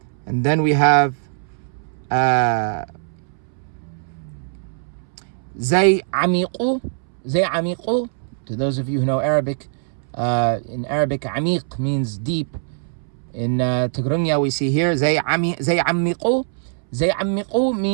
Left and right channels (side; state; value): left; silent; 64 dB below the other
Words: And then we have zay amiqu. Zay amiqu. To those of you who know Arabic, in Arabic, amiq means deep. In Tigrigna, we see here zay amiqu. Zay amiqu